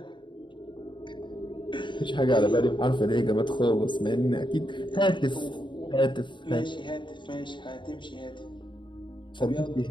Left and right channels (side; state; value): right; late; 0.23 ms